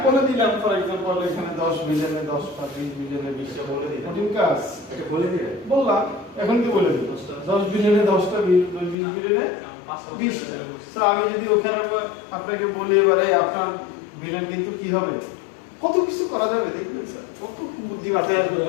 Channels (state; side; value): drops out; right; at 9.0 s